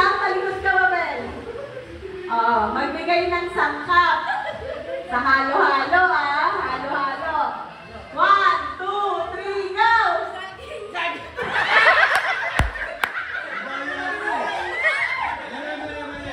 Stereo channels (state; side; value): identical; both; correlation 1.00